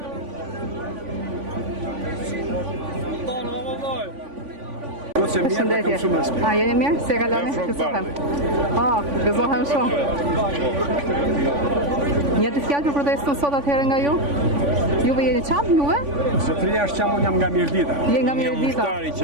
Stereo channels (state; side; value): late; left; 3.5 ms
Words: Përshëndetje. A, jeni mirë? Se kaloni? Gëzohem. Gëzohem shumë. Një të fjallë për protestën sot atëherë nga ju? Juve jeni qamë, juve? Zotëria është qamë, unë jam nga Mirdita. Je nga Mirdita. Një mushtari